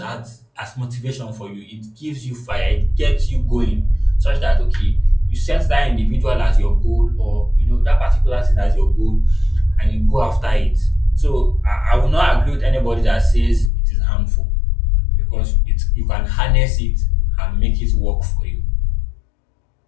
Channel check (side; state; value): right; drops out; at 13.7 s